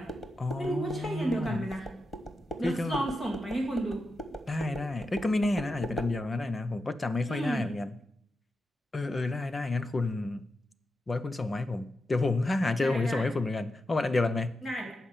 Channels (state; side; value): normal; both; correlation 0.88